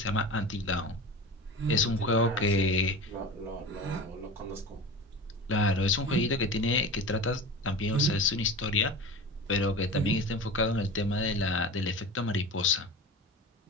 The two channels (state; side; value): normal; both; correlation 0.32